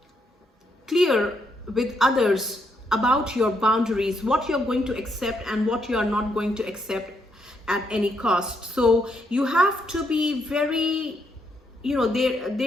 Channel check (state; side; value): normal; both; correlation 0.76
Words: clear with others about your boundaries, what you're going to accept and what you are not going to accept at any cost. So you have to be very, you know,